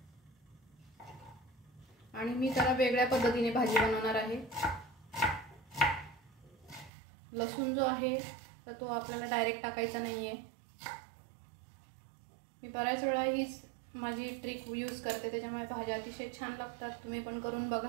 आणि मी त्याला वेगळ्या पद्धतीने भाजी बनवणार आहे। लसूण जो आहे तर तो आपल्याला डायरेक्ट टाकायचा नाहीये। मी बऱ्याच वेळा हीच माझी ट्रिक यूज करते, त्याच्यामुळे भाज्या अतिशय छान लागतात। तुम्ही पण करून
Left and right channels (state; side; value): drops out; left; at 6.9 s